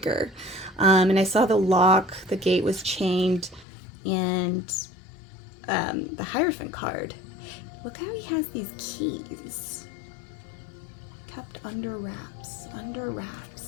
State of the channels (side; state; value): right; drops out; at 3.7 s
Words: and I saw the lock, the gate was chained, and the Hierophant card. Look how he has these keys kept under wraps, under